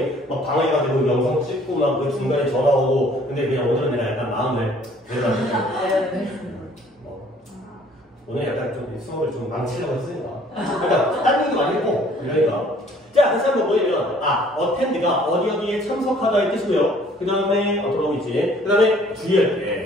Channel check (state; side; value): normal; both; correlation 0.57